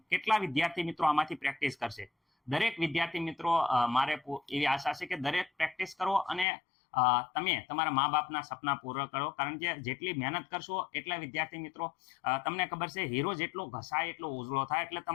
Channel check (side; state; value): right; drops out; at 6.5 s